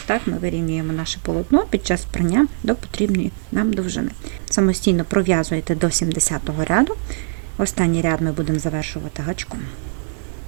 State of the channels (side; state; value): left; silent; digital silence